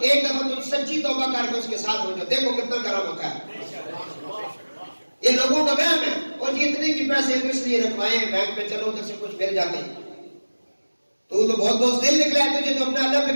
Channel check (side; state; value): both; inverted; correlation -1.00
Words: ایک دفعہ تم سچی توبہ کر کے اس کے ساتھ ہو جاؤ، دیکھو کتنا کرم ہوتا ہے۔ یہ لوگوں کا وہم ہے، اور جی اتنے کی پیسے اس لیے رکھوائے ہیں بینک میں، چلو ادھر سے کچھ مل جاتے ہیں۔ تو بہت بہت دل نکلا ہے تجھے، تو اپنا اللہ